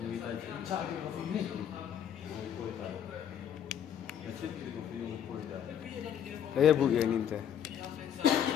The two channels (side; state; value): right; quieter; 9.2 dB